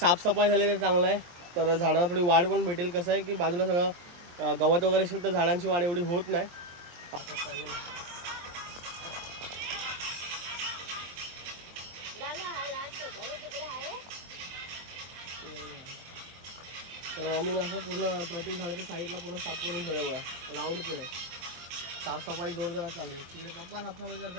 झाली तर चांगलं आहे. तर झाडांना थोडी वाढ पण भेटेल. कसं आहे की बाजूला सगळं गवत वगैरे असेल तर झाडांची वाढ एवढी होत नाही. तर मम्मीने असं पूर्ण प्रत्येक झाडाच्या साईडला पूर्ण साफ करून ठेवलं बघा, राऊंड केलंय. साफसफाई जोरदार चालली. तिकडे पप्पा साफसफाई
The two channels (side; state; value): left; late; 23 ms